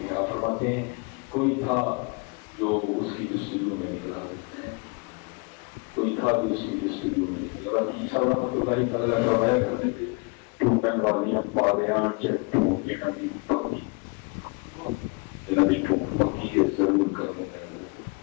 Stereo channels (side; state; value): right; quieter; 30.4 dB